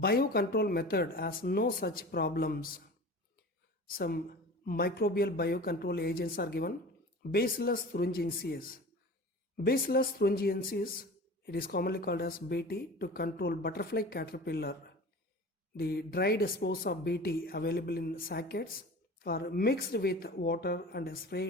method has no such problems. Some microbial biocontrol agents are given. Bacillus thuringiensis. Bacillus thuringiensis, it is commonly called as BT, to control butterfly caterpillar. The dried spores of BT available in sackets are mixed with water and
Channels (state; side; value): normal; both; correlation 0.37